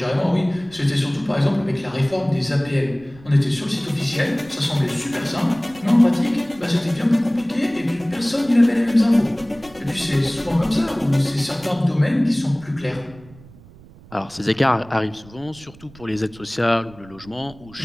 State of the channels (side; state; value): right; noise; rumble, 22 dB below the sound